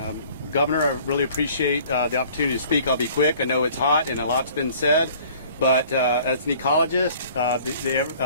Governor. I really appreciate the opportunity to speak. I'll be quick. I know it's hot and a lot's been said, but as an ecologist,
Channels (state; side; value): inverted; both; correlation -0.52